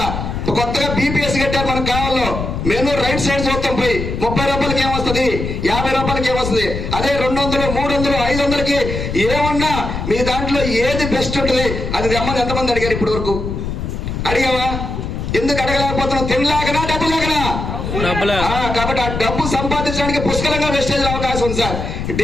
కొత్తగా బీపీఎస్ కట్టారు మనకు కావాలో. మెనూ రైట్ సైడ్ చూస్తాం. పోయి 30 రూపాయలకి ఏమొస్తుంది? 50 రూపాయలకి ఏమొస్తుంది? అదే 200, 300, 500కి ఏమన్నా మీ దాంట్లో ఏది బెస్ట్ ఉంటుంది అది తెమ్మని ఎంతమంది అడిగారు ఇప్పటి వరకు? అడిగావా? ఎందుకు అడగలేకపోతున్నాం? తినలేకనా, డబ్బు లేకనా? కాబట్టి ఆ డబ్బు సంపాదించడానికి పుష్కలంగా వెస్టేజ్ అవకాశం ఉంది సార్.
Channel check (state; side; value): noise; left; rumble, 4 dB below the sound